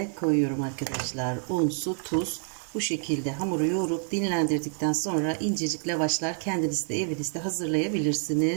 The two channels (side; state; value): left; silent; 56 dB below the other